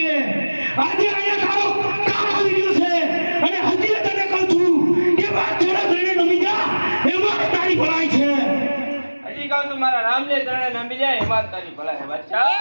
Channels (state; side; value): inverted; both; correlation -1.00